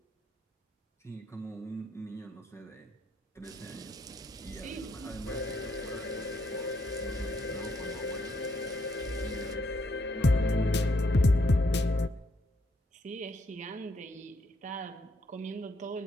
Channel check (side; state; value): both; normal; correlation 0.74